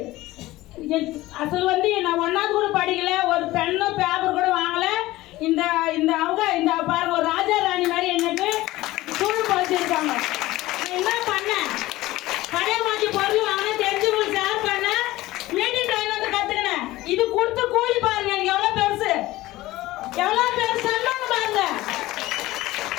அசல் வந்து நான் 1வது கூட படிக்கல, ஒரு பெண்ணோ பேப்பர் கூட வாங்கலை. இந்த இந்த அவங்க இந்த பாருங்க ஒரு ராஜா ராணி மாதிரி எனக்கு சூழல் பழிச்சிருக்காங்க. என்ன பண்ணேன், பழைய மாற்றி பொருள் வாங்க தெரிஞ்சவங்களுக்கு ஷேர் பண்ண மீட்டிங் டைம் வந்து கற்றுக்கினேன். இது கொடுத்து கூலி பாருங்க எனக்கு எவ்வளோ பெருசு, எவ்வளோ பெருசு பாருங்க.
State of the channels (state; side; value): quieter; right; 17.7 dB